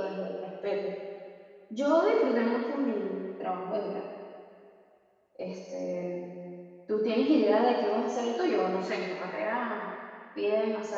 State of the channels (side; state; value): both; identical; correlation 1.00